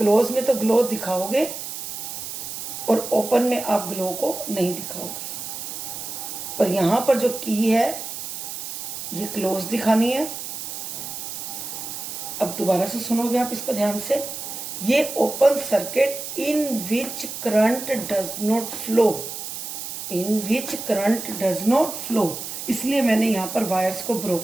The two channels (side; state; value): right; noise; hiss, 7 dB below the sound